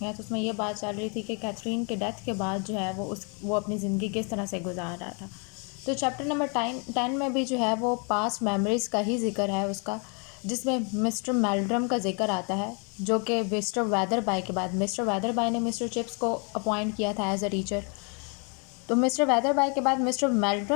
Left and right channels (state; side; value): quieter; right; 35.8 dB